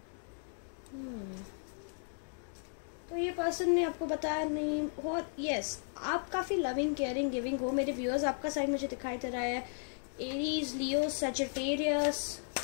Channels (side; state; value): right; silent; digital silence